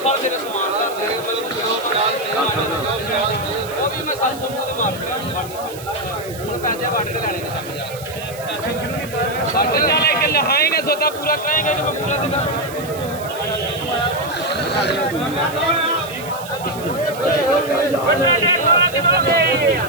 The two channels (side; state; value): right; noise; hiss, 16 dB below the sound